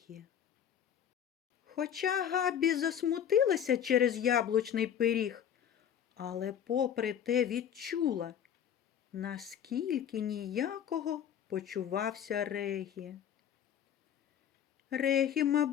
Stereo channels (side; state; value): right; quieter; 9.2 dB